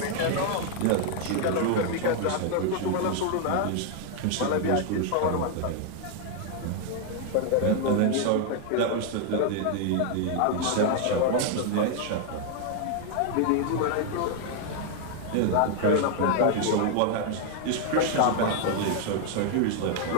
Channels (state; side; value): different; both; correlation 0.00